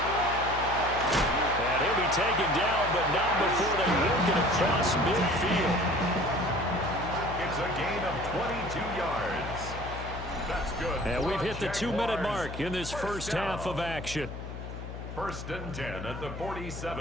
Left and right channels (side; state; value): left; noise; hum, 9 dB below the sound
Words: And he'll be taken down, but not before they work it across midfield. It's a gain of 22 yards. That's good. And we've hit the 2-minute mark in this first half of action. First and 10 at the